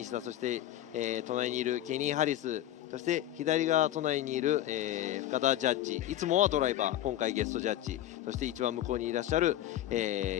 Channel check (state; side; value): quieter; right; 12.9 dB